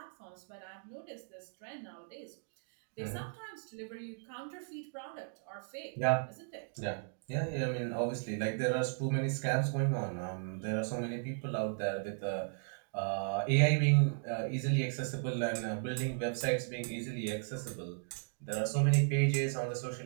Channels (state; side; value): silent; left; digital silence